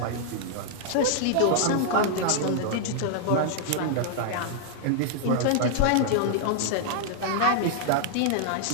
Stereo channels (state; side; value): different; both; correlation -0.01